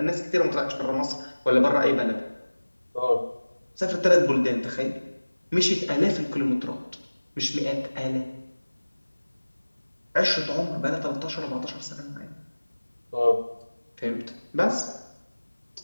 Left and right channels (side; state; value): both; inverted; correlation -1.00